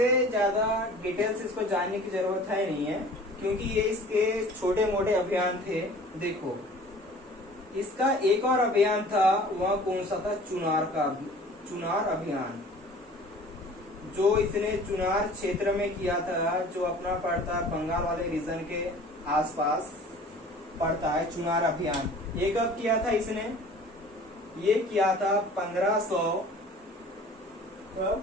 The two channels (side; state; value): both; normal; correlation 0.46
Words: ज्यादा डिटेल्स इसको जानने की जरूरत है नहीं है, क्योंकि ये इसके छोटे मोटे अभियान थे। देखो इसका एक और अभियान था, वह कौन सा था? चुनार अभियान, जो इसने चुनार क्षेत्र में किया था, जो अपना पड़ता बंगाल वाले रीजन के आसपास पड़ता है। चुनार अभियान ये कब किया था इसने? ये किया था